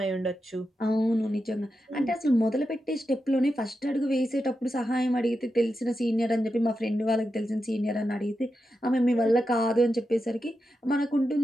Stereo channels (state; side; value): normal; both; correlation 0.88